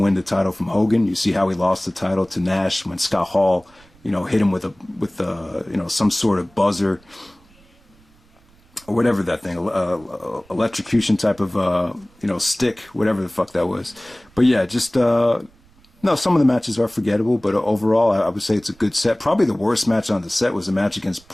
win the title from Hogan. You see how he lost the title to Nash when Scott Hall, you know, hit him with you know, some sort of buzzer or whatever that thing, electrocution type of you know, stick, whatever the fuck that was. But yeah, just no, some of the matches are forgettable, but overall, I would say it's a good set. Probably the worst match on the set was a match against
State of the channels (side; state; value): right; noise; rumble, 30 dB below the sound